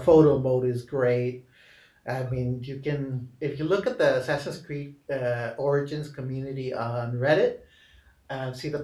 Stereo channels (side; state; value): both; identical; correlation 1.00